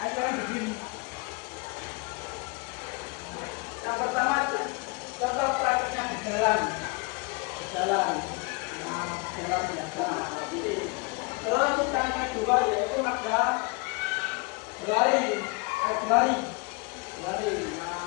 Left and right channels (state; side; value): quieter; right; 29.6 dB